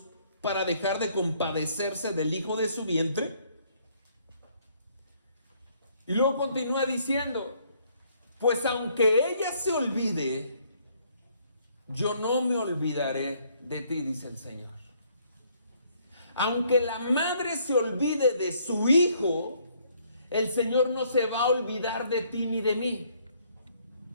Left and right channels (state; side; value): inverted; both; correlation -0.66